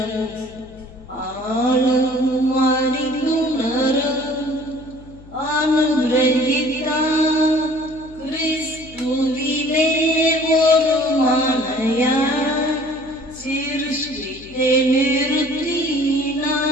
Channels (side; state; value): left; noise; hum, 21 dB below the sound